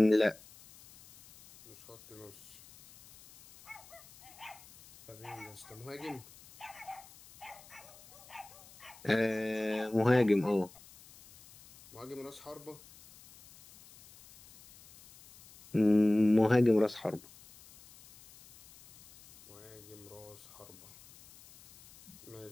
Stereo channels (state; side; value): noise; left; hiss, 22 dB below the sound